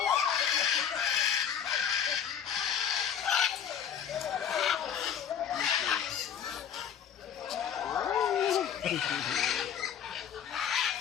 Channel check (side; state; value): right; quieter; 8.4 dB